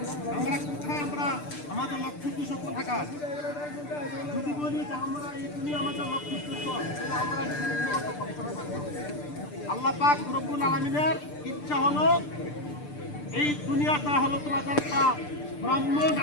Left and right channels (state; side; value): late; right; 6.8 ms